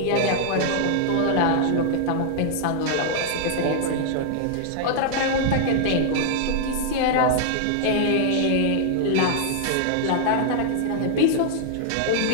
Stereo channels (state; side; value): different; both; correlation -0.01